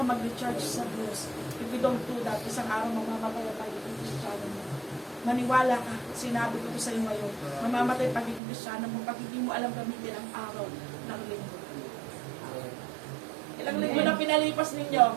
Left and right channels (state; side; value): drops out; left; at 8.4 s